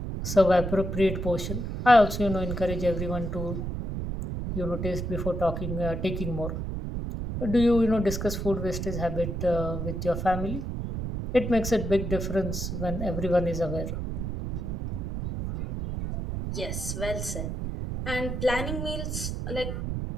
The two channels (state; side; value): noise; right; rumble, 4 dB below the sound